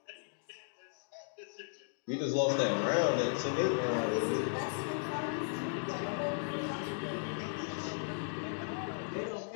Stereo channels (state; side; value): silent; right; digital silence